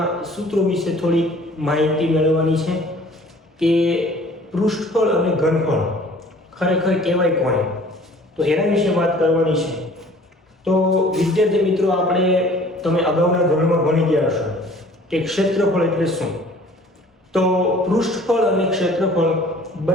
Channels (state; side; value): normal; both; correlation 0.51